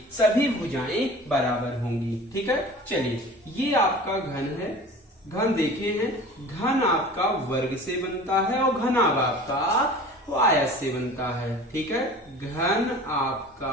सभी भुजाएं बराबर होंगी। ठीक है, चलिए ये आपका घन है। घन देखे हैं, घन आपका वर्ग से बनता है और घनाभ आपका आयत से बनता है। ठीक है, घन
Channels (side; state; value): both; normal; correlation 0.41